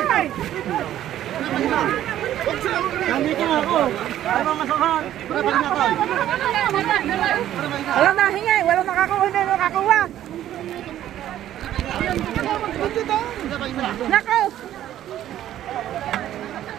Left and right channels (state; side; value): quieter; left; 12.2 dB